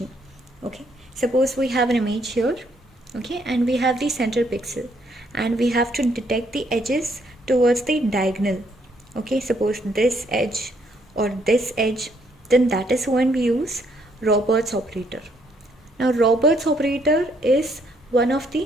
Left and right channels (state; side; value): normal; both; correlation 0.70